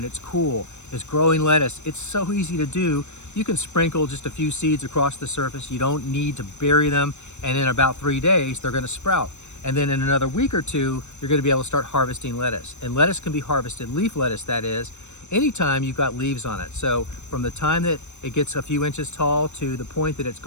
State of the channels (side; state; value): right; late; 0.83 ms